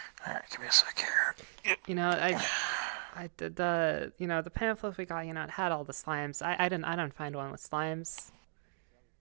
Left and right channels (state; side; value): silent; left; digital silence